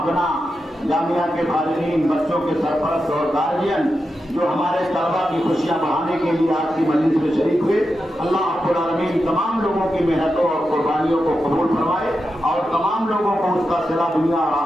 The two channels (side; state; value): both; normal; correlation 0.89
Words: جامعہ کے فارغین، بچوں کے سرپرست اور گارجین جو ہمارے طلباء کی خوشیاں بڑھانے کے لیے آج کی مجلس میں شریک ہوئے، اللہ رب العالمین تمام لوگوں کی محنتوں اور قربانیوں کو قبول فرمائے اور تمام لوگوں کو اس کا صلہ دنیا اور